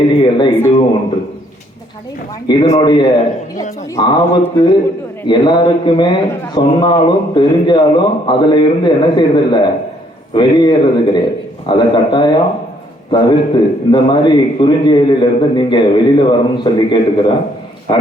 இதுவும் ஒன்று. இதனுடைய ஆபத்து எல்லாருக்குமே சொன்னாலும் தெரிஞ்சாலும் அதுல இருந்து என்ன செய்யறதில்ல, வெளியேறது கிடையாது. அதை கட்டாயம் தவிர்த்து இந்த மாதிரி குறுஞ்செயலில் இருந்து நீங்க வெளியில வரணும்னு சொல்லி கேட்டுக்கிறேன்.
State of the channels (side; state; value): both; normal; correlation 0.66